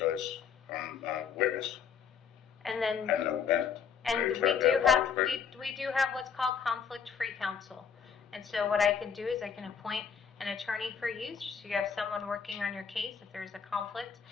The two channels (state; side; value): quieter; right; 6.9 dB